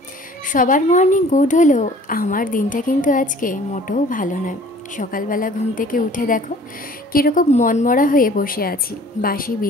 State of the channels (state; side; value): normal; both; correlation 0.51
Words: সবার মর্নিং গুড হলেও আমার দিনটা কিন্তু আজকে মোটেও ভালো নয়। সকালবেলা ঘুম থেকে উঠে দেখো কীরকম মনমরা হয়ে বসে আছি। বাসি